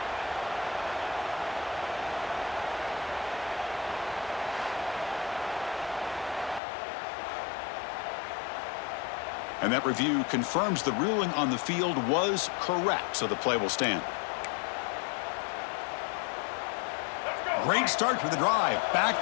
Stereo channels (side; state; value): right; drops out; at 6.6 s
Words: And that review confirms the ruling on the field was correct, so the play will stand. Great start for the drive.